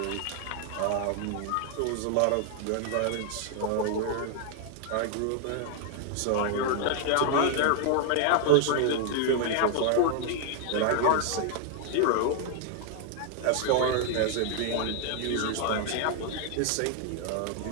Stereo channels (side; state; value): both; different; correlation 0.00